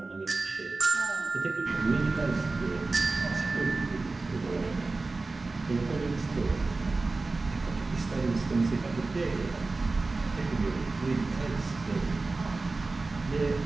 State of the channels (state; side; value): quieter; left; 3.6 dB